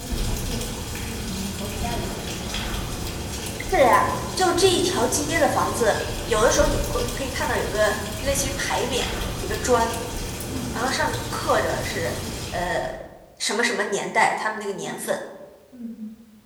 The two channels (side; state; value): both; identical; correlation 1.00